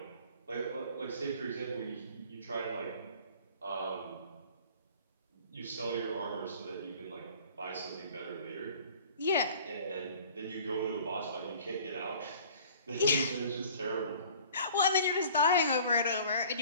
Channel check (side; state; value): both; inverted; correlation -0.49